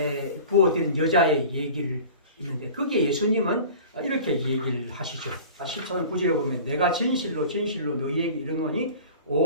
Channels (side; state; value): both; inverted; correlation -0.40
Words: 부어드린 여자의 얘기를 있는데 거기에 예수님은 이렇게 얘기를 하시죠. 14장 9절에 보면 내가 진실로 진실로 너희에게 이르노니